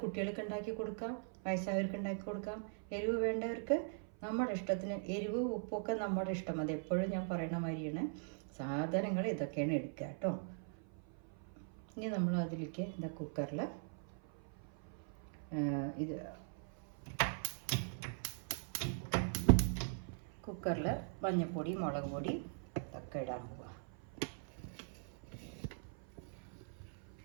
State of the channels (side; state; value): left; silent; 50 dB below the other